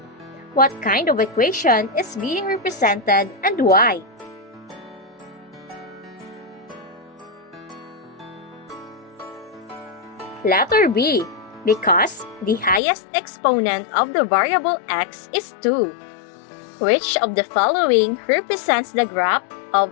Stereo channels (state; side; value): drops out; right; at 12.8 s